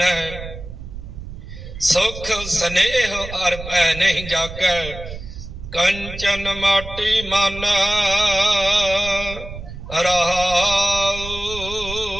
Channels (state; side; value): noise; right; rumble, 11 dB below the sound